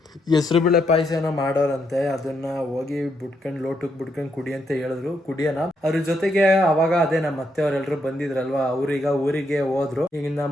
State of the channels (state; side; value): normal; both; correlation 0.78